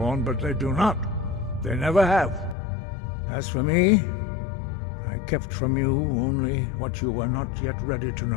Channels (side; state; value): right; drops out; at 2.6 s